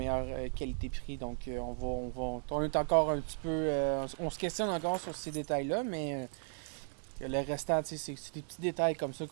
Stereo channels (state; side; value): silent; left; digital silence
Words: qualité-prix. Donc, on est encore un petit peu... on se questionne encore sur ces détails-là, mais le restant, c'est des petits détails comme ça